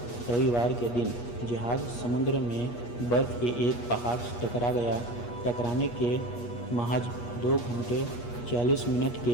रविवार के दिन जहाज़ समुद्र में बर्फ़ के एक पहाड़ से टकरा गया। टकराने के महज 2 घंटे 40 मिनट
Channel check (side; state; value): right; late; 8.4 ms